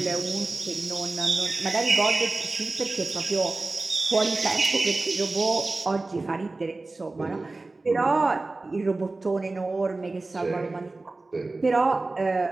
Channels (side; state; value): left; quieter; 3.3 dB